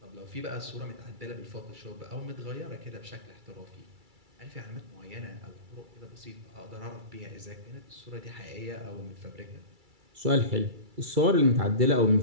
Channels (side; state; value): left; late; 2.3 ms